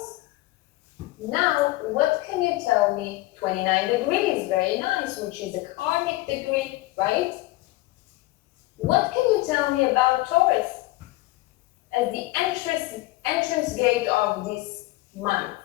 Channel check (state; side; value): quieter; right; 19.1 dB